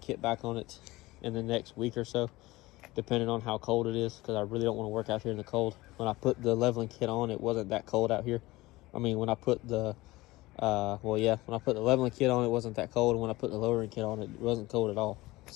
back on it in the next week or so, depending on how cold it is, because I really don't want to work out here in the cold. When I put the leveling kit on, it wasn't that cold out here. I mean, when I put the when I put the leveling kit on, it wasn't that cold, and when I put the lowering kit on, it wasn't cold at all.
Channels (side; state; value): right; quieter; 19.6 dB